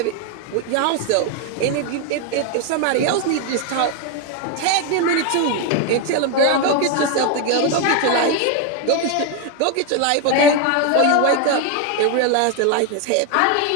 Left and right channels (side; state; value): both; different; correlation 0.01